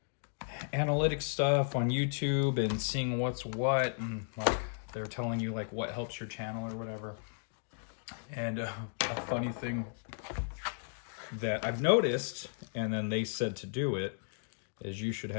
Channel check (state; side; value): silent; right; digital silence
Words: analytics stuff on YouTube and seeing what's what, and like they're telling you like what helps your channel or whatever. And a funny thing that I've noticed, and then they said to do it, is you should